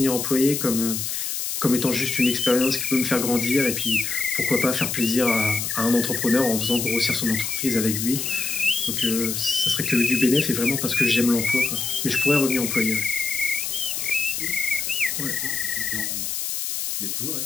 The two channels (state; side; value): noise; left; hiss, 3 dB below the sound